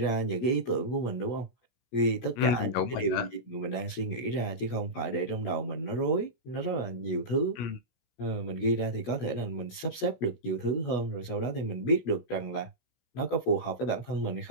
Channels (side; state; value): right; late; 16 ms